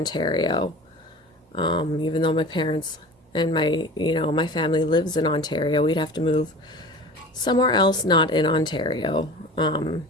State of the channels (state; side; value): normal; both; correlation 0.37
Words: Even though my parents and my family lives in Ontario, we'd have to move somewhere else not in Ontario